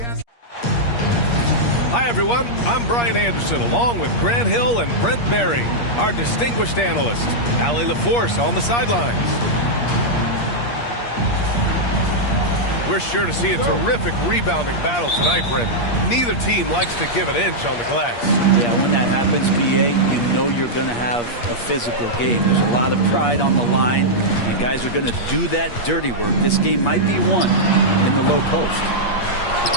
Hi, everyone. I'm Brian Anderson, along with Grant Hill and Brent Berry, our distinguished analyst. Allie LaForce on the sidelines. We're sure to see a terrific rebounding battle tonight, Brent. Neither team likes to give an inch on the glass. Yeah, when that happens, BA, you know you're going to have a physical game. There's a lot of pride on the line, and guys are going to do that dirty work. This game might be won in the low post.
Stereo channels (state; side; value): late; right; 8.5 ms